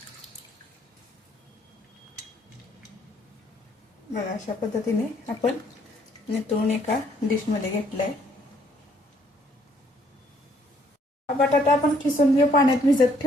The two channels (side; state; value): both; normal; correlation 0.66